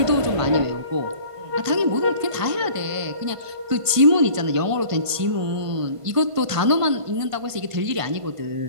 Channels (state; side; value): late; left; 1.5 ms